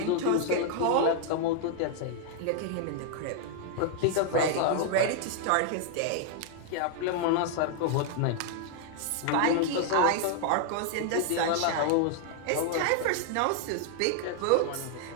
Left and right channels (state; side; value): different; both; correlation 0.00